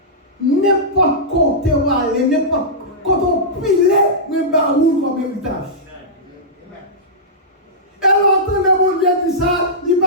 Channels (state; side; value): normal; both; correlation -0.14